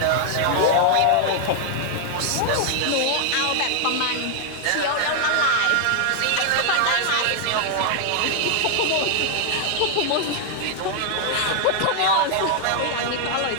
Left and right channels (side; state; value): both; different; correlation 0.00